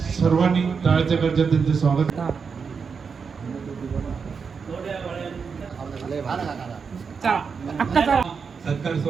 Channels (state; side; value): quieter; left; 5.7 dB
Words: सर्वांनी टाळ्याच्या गरजेत त्यांचे स्वागत. सत्कार